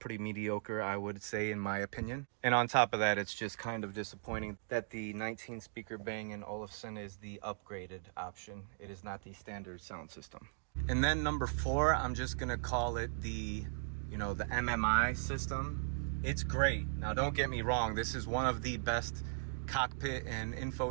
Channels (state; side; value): silent; left; digital silence